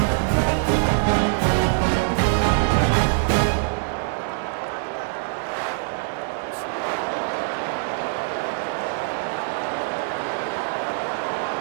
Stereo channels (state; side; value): silent; left; digital silence